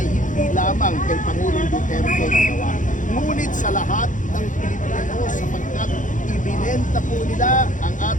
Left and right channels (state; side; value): late; right; 0.37 ms